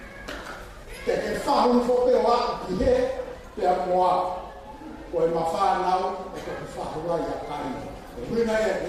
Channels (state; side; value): identical; both; correlation 1.00